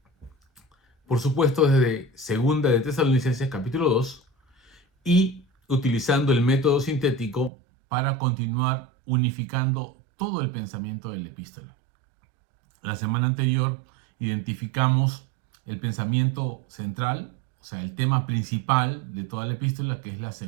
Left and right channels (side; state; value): left; drops out; at 7.5 s